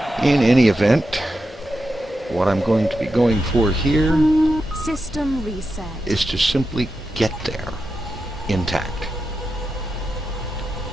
In any event, what I'm going to be going for here System reset. is to simply get there intact.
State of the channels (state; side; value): normal; both; correlation 0.88